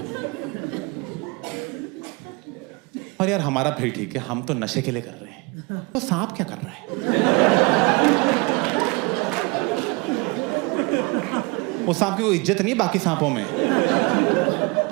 और यार हमारा फिर ठीक है, हम तो नशे के लिए कर रहे हैं, तो सांप क्या कर रहा है? वो सांप की कोई इज्जत नहीं है बाकी सांपों में।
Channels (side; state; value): left; quieter; 27.0 dB